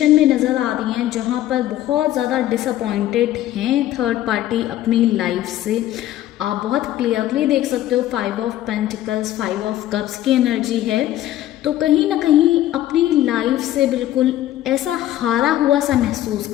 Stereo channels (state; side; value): quieter; right; 13.5 dB